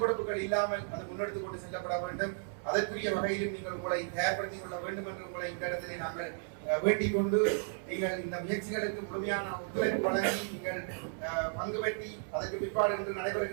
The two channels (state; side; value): silent; left; 55 dB below the other